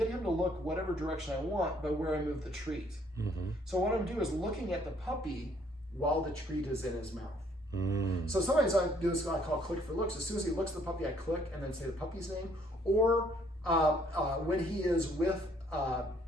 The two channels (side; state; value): both; normal; correlation 0.64